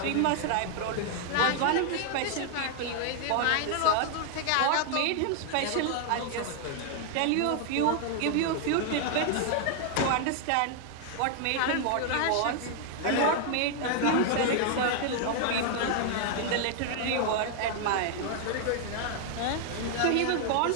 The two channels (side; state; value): both; different; correlation 0.00